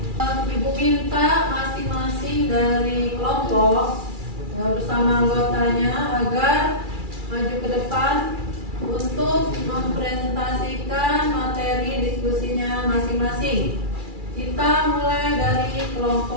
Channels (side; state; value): left; late; 2.3 ms